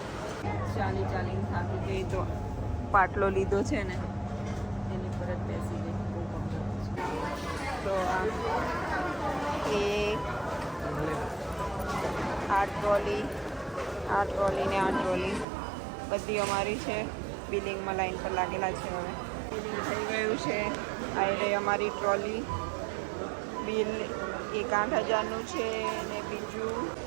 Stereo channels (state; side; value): drops out; left; at 15.5 s